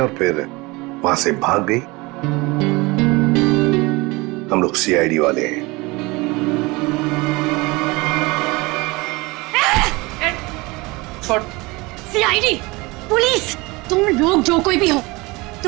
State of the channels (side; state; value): left; quieter; 23.8 dB